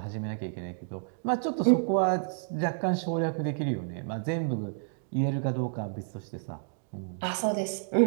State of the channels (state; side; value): silent; left; digital silence